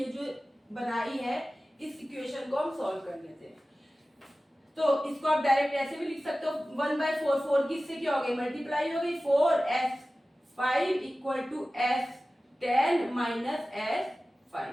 जो बनाई है इस इक्वेशन को हम सॉल्व कर लेते हैं, तो इसको आप डायरेक्ट ऐसे भी लिख सकते हो, 1/4 4 की इससे क्या हो गई, मल्टीप्लाई हो गई, 4 S5 = S10 - S5,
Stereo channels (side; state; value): both; normal; correlation 0.96